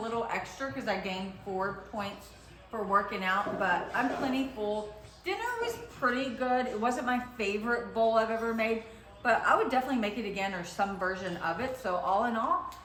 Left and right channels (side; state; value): both; identical; correlation 1.00